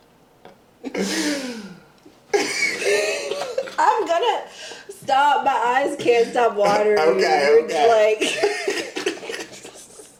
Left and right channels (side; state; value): both; identical; correlation 1.00